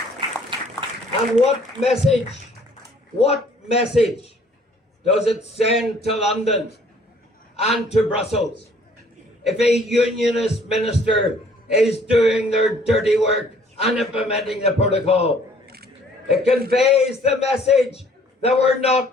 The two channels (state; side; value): normal; both; correlation 0.58